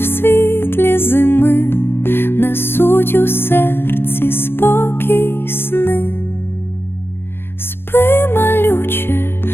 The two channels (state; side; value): late; right; 0.11 ms